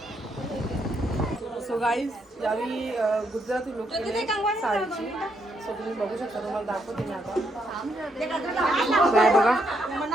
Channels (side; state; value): both; normal; correlation 0.76